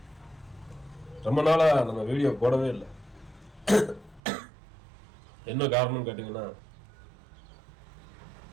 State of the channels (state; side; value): drops out; left; at 4.2 s